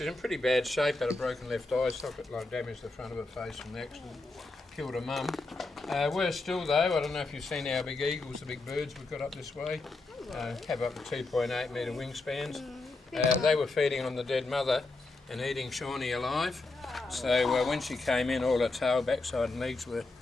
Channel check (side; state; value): right; quieter; 3.3 dB